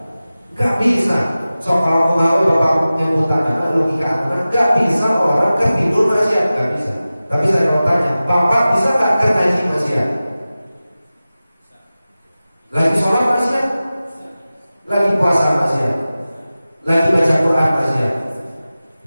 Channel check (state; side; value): inverted; both; correlation -0.96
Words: Nggak bisa. So kalau mau bapak nyebutan logika anak, nggak bisa orang kan tidur maksiat, nggak bisa. Tapi saya mau tanya, bapak bisa nggak kan ngaji maksiat? Lagi sholat maksiat, lagi puasa maksiat, lagi baca Quran maksiat,